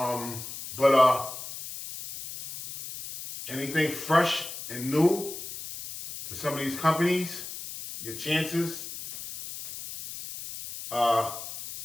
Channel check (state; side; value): noise; left; hiss, 10 dB below the sound